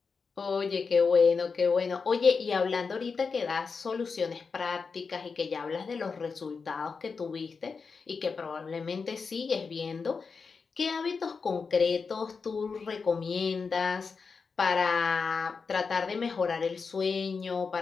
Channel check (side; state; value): right; quieter; 5.1 dB